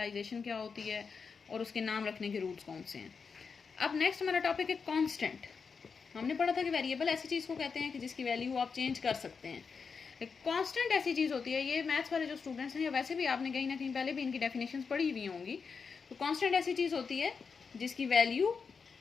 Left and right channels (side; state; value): right; quieter; 5.5 dB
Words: क्या होती है और उसके नाम रखने के रूल्स कौन से हैं। अब नेक्स्ट हमारा टॉपिक है कांस्टेंट। हमने पढ़ा था कि वेरिएबल ऐसी चीज़ को कहते हैं कि जिसकी वैल्यू आप चेंज कर सकते हैं। कांस्टेंट ऐसी चीज़ होती है, ये मैथ्स वाले जो स्टूडेंट्स हैं या वैसे भी आपने कहीं ना कहीं पहले भी इनकी डेफिनेशंस पढ़ी हुई होंगी। तो कांस्टेंट ऐसी चीज़ होती है जिसकी वैल्यू